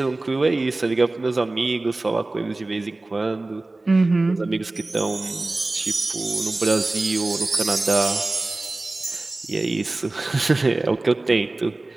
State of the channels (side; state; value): left; quieter; 3.0 dB